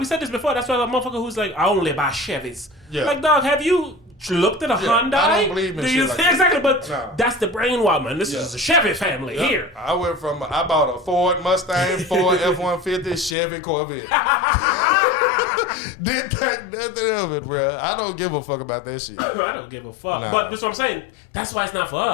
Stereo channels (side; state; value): right; drops out; at 13.4 s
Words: said this before. That's why a motherfucker who's like, I only buy Chevys. Yeah. Like, dog, have you looked at a Hyundai? I don't believe in Do shit you like that. exactly? But No. that's the brainwash, man. This Yeah. is a Chevy family Yep. here. I bought a Ford Mustang, Ford F-150, Chevy Corvette. Didn't think nothing of it, bro. I don't give a fuck about that shit. I don't give a fuck. Nah. But that's what I'm saying. That's why it's not for